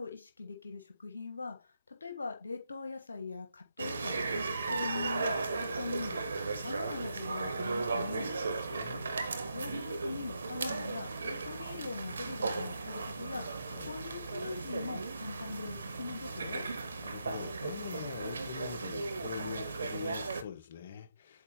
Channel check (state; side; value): inverted; both; correlation -0.81